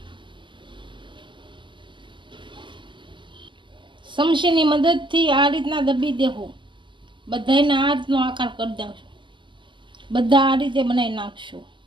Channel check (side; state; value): left; late; 0.24 ms